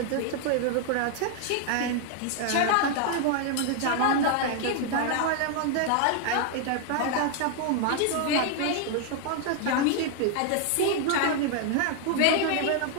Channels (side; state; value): both; different; correlation 0.00